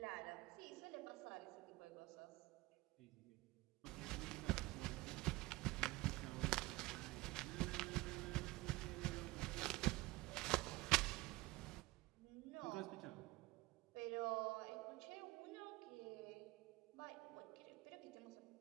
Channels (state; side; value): quieter; left; 20.5 dB